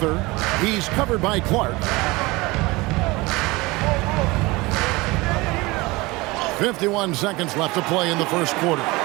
He's covered by Clark. 51 seconds left to play in the first quarter.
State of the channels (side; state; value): left; quieter; 22.5 dB